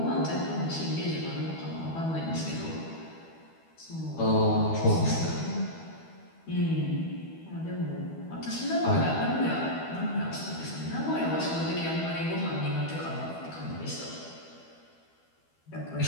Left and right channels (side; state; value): right; late; 12 ms